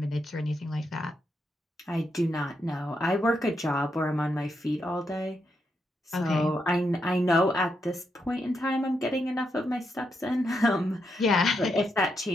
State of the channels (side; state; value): both; normal; correlation 0.82